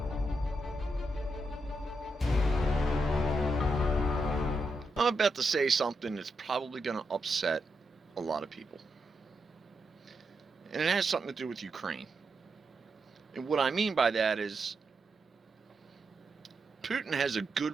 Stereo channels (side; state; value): both; normal; correlation 0.84